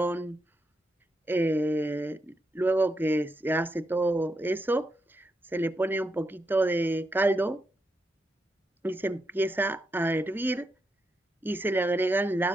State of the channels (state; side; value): normal; both; correlation 0.83